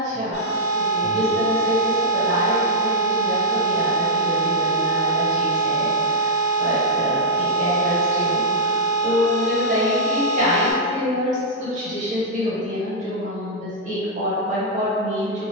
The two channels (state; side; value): normal; both; correlation -0.09